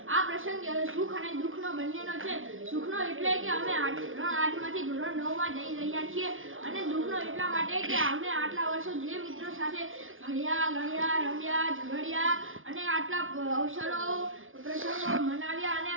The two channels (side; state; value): left; late; 0.59 ms